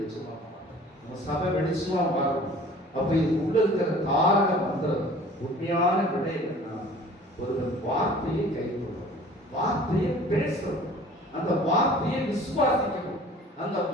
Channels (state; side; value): normal; both; correlation 0.47